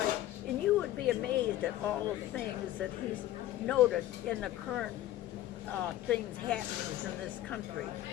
And you would be amazed at all the things that he's noted in the current things happenings in this country,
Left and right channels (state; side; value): quieter; right; 14.0 dB